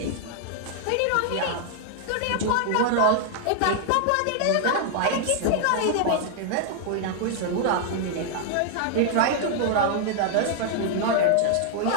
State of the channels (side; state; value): both; different; correlation 0.00